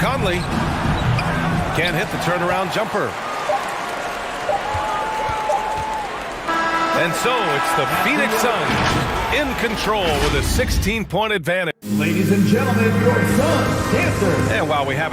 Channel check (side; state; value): both; identical; correlation 1.00